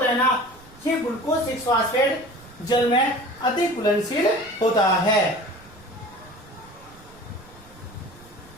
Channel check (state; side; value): noise; right; rumble, 24 dB below the sound